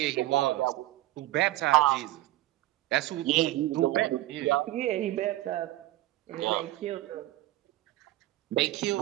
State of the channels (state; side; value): quieter; left; 16.2 dB